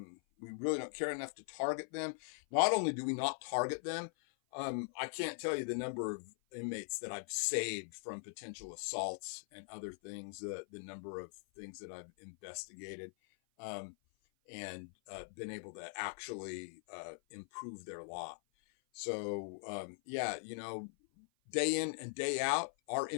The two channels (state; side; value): silent; right; 50 dB below the other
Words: really don't care enough to target them. Not only do we not target them, I can't tell you the number of inmates that I've saved from potential assaults and other things, the number of things that I've investigated and been able to actually improve their lot. So, day in and day out, our